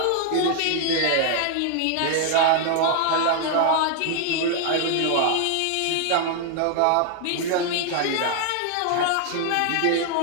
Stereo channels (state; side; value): different; both; correlation 0.00